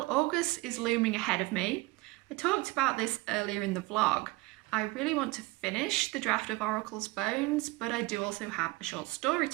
August is looming ahead of me. I talked about this earlier in the vlog. I really want to finish the draft of Oracle's Bones, but I do also have a short story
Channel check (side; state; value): left; quieter; 22.5 dB